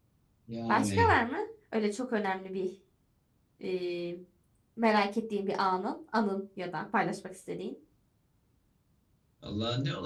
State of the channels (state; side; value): identical; both; correlation 1.00